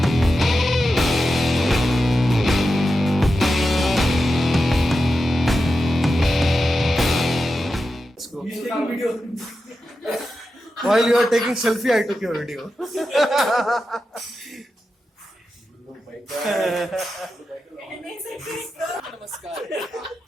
While you are taking selfie, I took your video.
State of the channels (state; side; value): normal; both; correlation 0.90